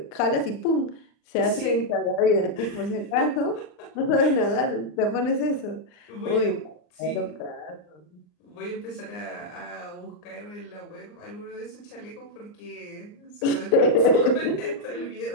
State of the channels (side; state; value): right; late; 39 ms